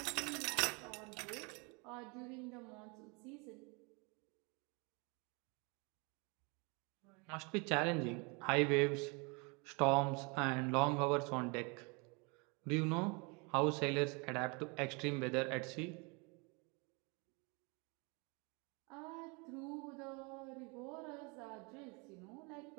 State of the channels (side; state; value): left; quieter; 30.8 dB